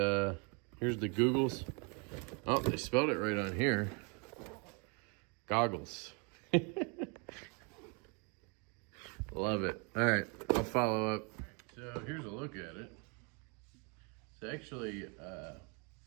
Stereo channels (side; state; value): left; quieter; 33.8 dB